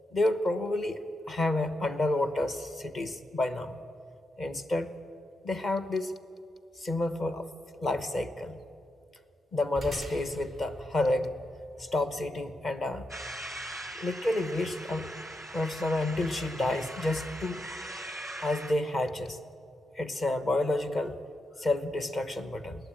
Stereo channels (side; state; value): both; normal; correlation 0.85